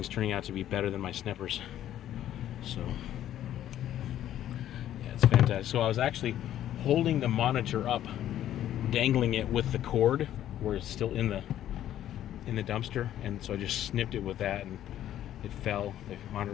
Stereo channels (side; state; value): right; quieter; 11.8 dB